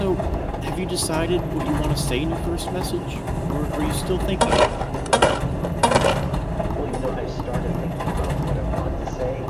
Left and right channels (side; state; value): both; identical; correlation 1.00